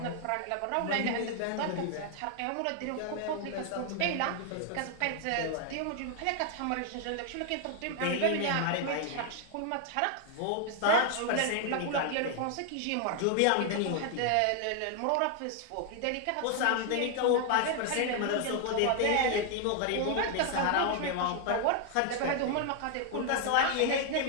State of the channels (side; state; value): both; different; correlation 0.00